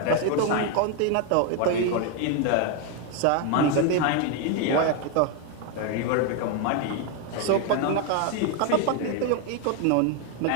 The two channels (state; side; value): different; both; correlation 0.01